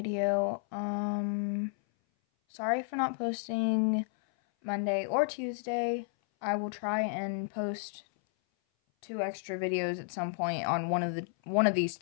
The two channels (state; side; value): silent; right; 56 dB below the other